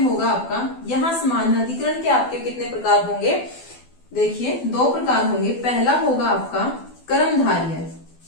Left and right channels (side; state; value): right; late; 12 ms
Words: आपका, यहाँ समानाधिकरण के आपके कितने प्रकार होंगे, देखिए 2 प्रकार होंगे। पहला होगा आपका कर्मधारय